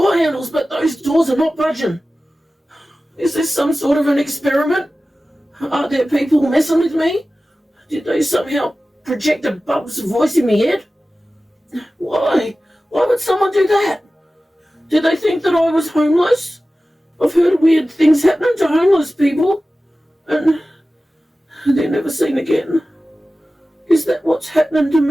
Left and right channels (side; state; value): both; normal; correlation 0.95